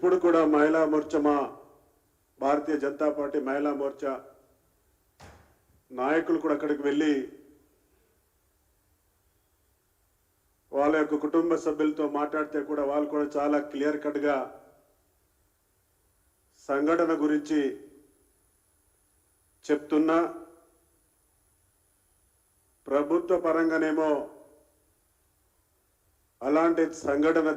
కూడా మహిళా మోర్చా, మా భారతీయ జనతా పార్టీ మహిళా మోర్చా నాయకులు కూడా అక్కడికి వెళ్ళి వాళ్ళ యొక్క కుటుంబ సభ్యులతో మాట్లాడితే కూడా వాళ్ళు కూడా చాలా క్లియర్ కట్గా సంఘటన గురించి చెప్తున్నా, ప్రభుత్వ పరంగానేమో అలాంటి సంఘటన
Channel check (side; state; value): both; identical; correlation 1.00